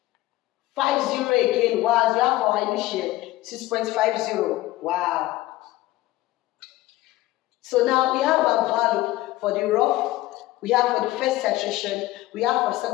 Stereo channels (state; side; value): quieter; right; 17.2 dB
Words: again. Wow, you have our initial 6.50. Wow. So now we have our value for the rough, we have for the first titration, we have for